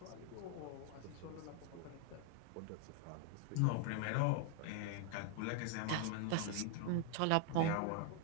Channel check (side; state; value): both; different; correlation 0.00